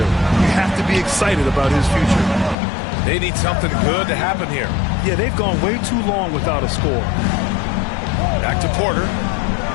You have to be excited about his future. They need something good to happen here. Yeah, they've gone way too long without a score. Back to Porter.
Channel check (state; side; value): drops out; right; at 2.6 s